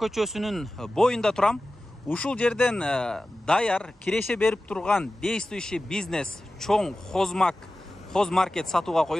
боюнда турам. Ушул жерден даяр киреше берип турган действующий бизнес чоң хозмаркет сатууга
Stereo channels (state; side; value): normal; both; correlation 0.95